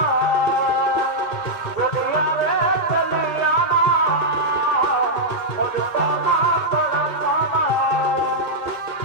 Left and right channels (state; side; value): late; right; 1.7 ms